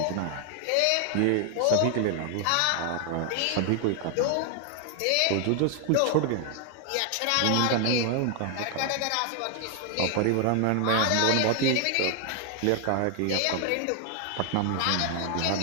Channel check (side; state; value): both; different; correlation 0.00